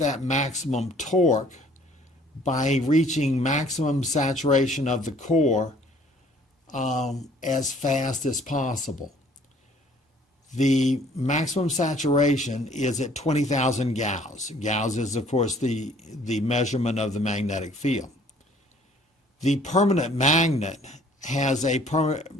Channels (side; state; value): both; normal; correlation 0.57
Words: maximum torque by reaching maximum saturation of the core as fast as possible. The maximum saturation is at 20,000 Gauss. Gauss is, of course, the measurement of the magnetic field. The permanent magnet has the